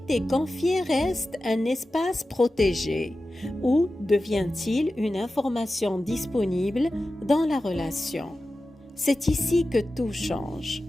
confié reste un espace protégé, ou devient-il une information disponible dans la relation? C'est ici que tout change.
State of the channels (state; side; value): normal; both; correlation 0.93